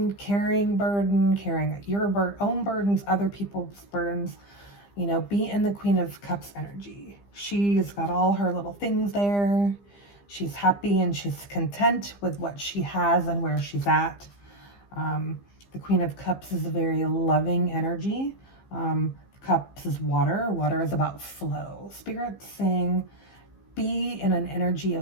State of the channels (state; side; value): late; right; 15 ms